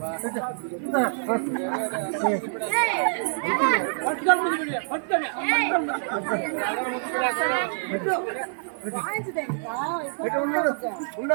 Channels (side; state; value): left; silent; digital silence